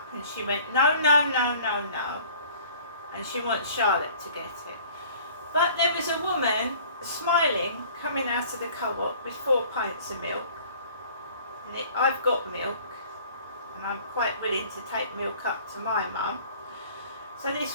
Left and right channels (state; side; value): inverted; both; correlation -0.50